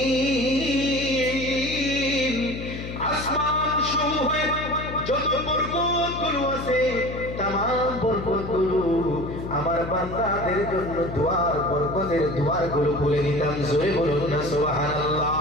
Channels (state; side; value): noise; left; hum, 8 dB below the sound